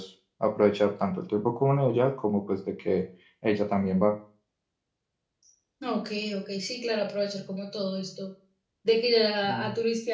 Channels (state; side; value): identical; both; correlation 1.00